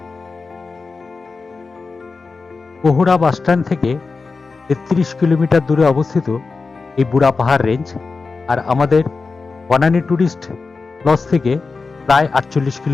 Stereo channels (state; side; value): quieter; right; 4.3 dB